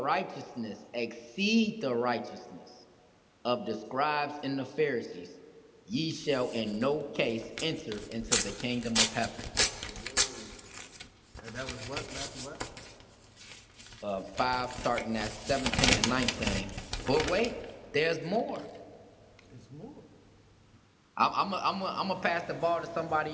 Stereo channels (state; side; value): identical; both; correlation 1.00